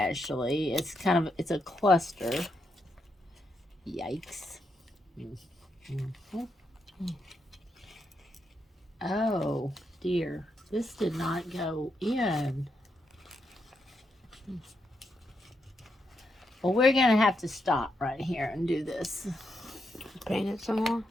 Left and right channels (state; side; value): normal; both; correlation 0.82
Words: It's a cluster. Yikes. Oh dear, this did not go in. Well, we're gonna have to stop right here and do this. Paint it some more?